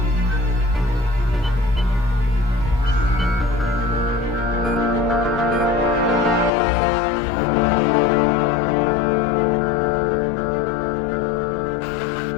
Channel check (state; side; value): drops out; right; at 6.5 s